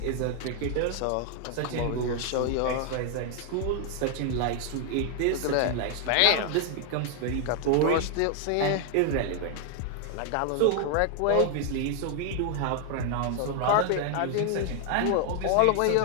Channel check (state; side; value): different; both; correlation 0.00